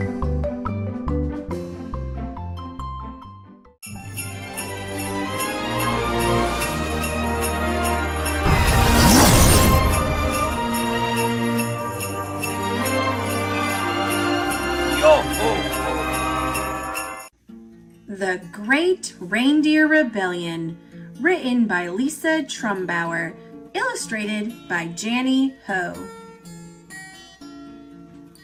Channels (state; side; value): identical; both; correlation 1.00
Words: The Great Reindeer Rebellion, written by Lisa Trumbauer, illustrated by Janny Ho.